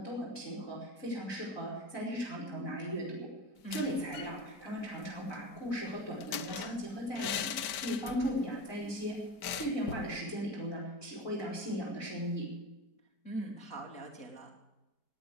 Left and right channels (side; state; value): right; late; 5.0 ms